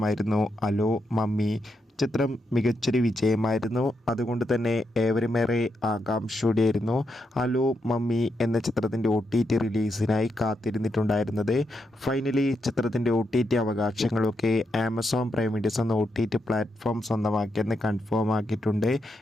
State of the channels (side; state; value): both; normal; correlation 0.83